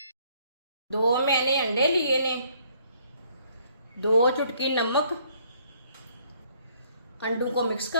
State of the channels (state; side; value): inverted; both; correlation -0.64